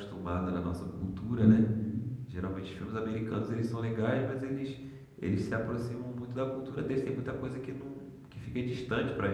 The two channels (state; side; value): identical; both; correlation 1.00